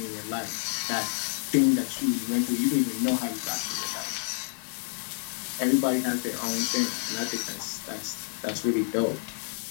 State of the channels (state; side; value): silent; right; digital silence